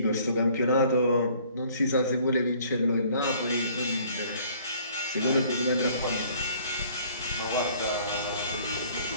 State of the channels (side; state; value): both; inverted; correlation -0.56